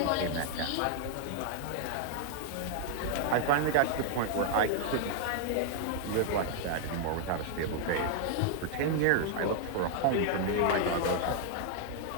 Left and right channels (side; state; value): both; different; correlation 0.00